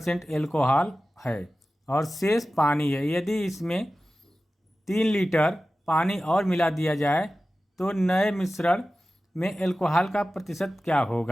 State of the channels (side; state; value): both; normal; correlation 0.95